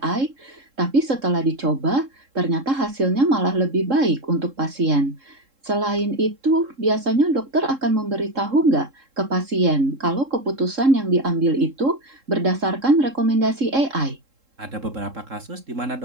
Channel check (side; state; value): left; late; 3.7 ms